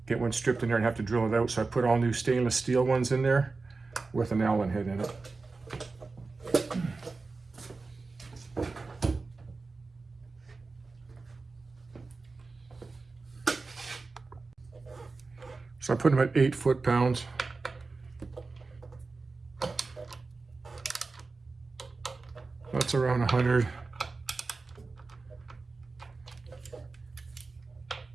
get one stripped in there and have to drill it out. So I put all new stainless steel ones in there with an Allen head in it. So I put them at 8 foot-pounds. That's around 100.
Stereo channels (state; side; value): quieter; left; 3.9 dB